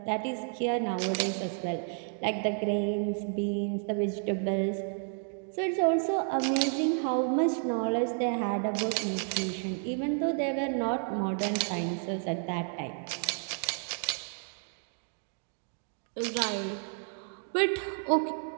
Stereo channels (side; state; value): left; silent; 57 dB below the other